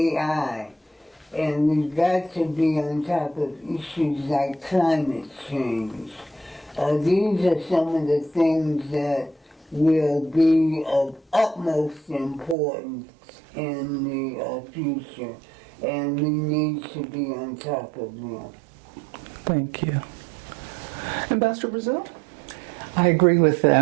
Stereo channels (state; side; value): drops out; left; at 12.6 s